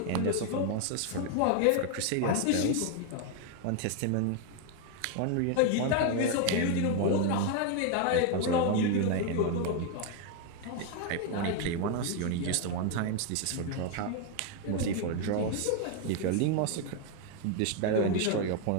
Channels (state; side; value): different; both; correlation 0.01